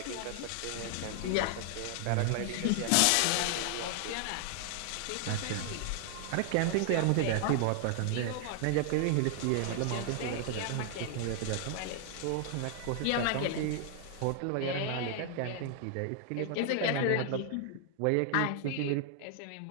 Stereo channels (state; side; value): different; both; correlation 0.00